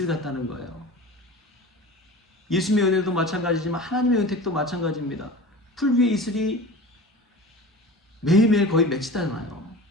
같다는 거예요. 예수님의 은혜도 마찬가지지만 하나님의 은택도 마찬가지입니다. 풀 위에 이슬이 매일매일 거의 맺히잖아요.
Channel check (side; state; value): both; normal; correlation 0.36